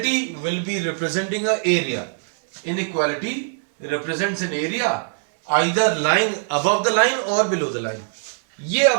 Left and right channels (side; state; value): left; silent; digital silence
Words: will be representing a area. Inequality represents an area either lying above the line or below the line। ये